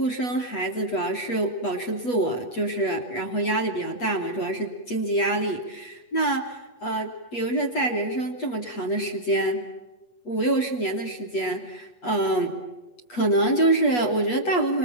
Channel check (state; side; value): late; right; 8.3 ms